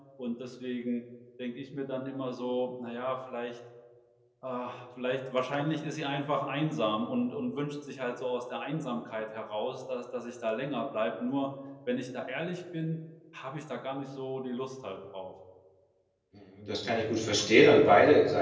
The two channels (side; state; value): both; identical; correlation 1.00